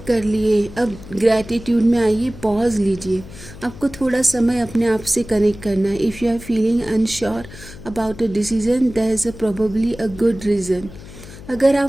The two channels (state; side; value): noise; left; hum, 16 dB below the sound